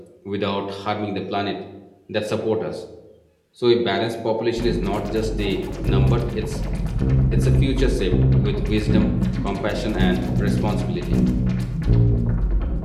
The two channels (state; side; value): identical; both; correlation 1.00